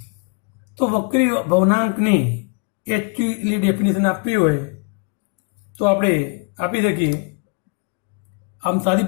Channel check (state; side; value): quieter; right; 35.3 dB